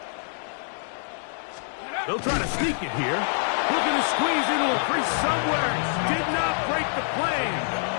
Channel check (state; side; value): silent; right; 56 dB below the other